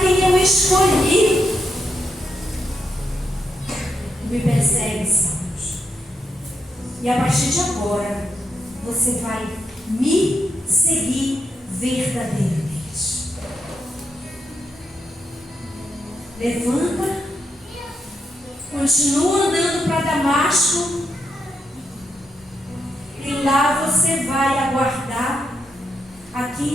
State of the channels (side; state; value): both; normal; correlation 0.82